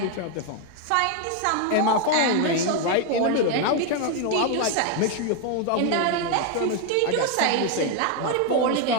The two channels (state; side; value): different; both; correlation 0.01